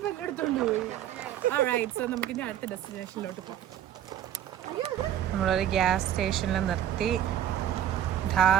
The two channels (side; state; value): left; quieter; 10.9 dB